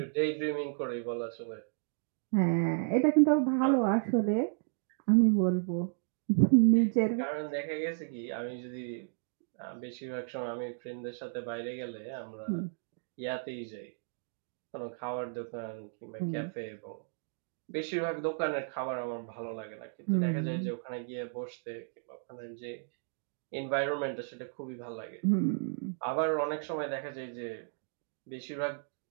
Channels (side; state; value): left; silent; digital silence